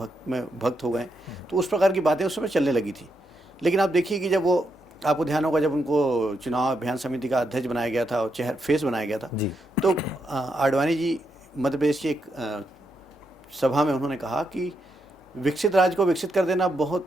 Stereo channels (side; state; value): both; normal; correlation 0.81